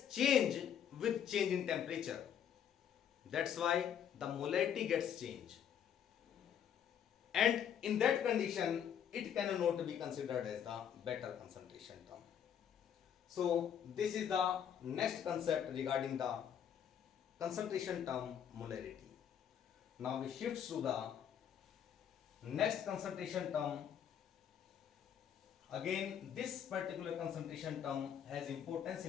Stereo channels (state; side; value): quieter; right; 8.9 dB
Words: changed with change in temperature. That's why the molarity gets changed. And in that condition, it cannot be considered as the better concentration term. So this is the next concept regarding the concentration term molarity. Now we shift to the next concentration term. Again, this particular concentration term has importance